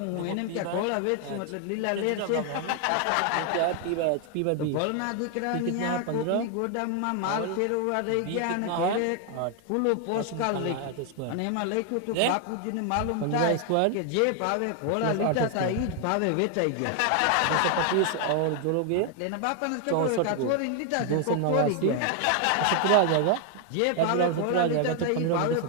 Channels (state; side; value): different; both; correlation 0.00